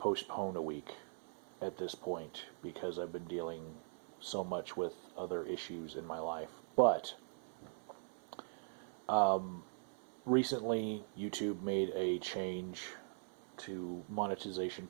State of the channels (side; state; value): left; silent; 50 dB below the other